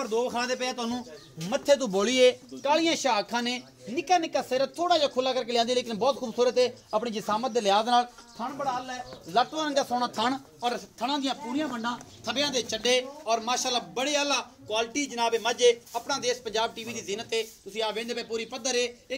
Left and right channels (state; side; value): identical; both; correlation 1.00